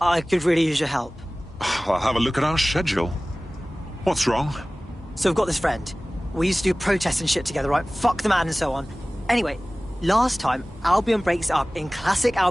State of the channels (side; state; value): both; normal; correlation 0.98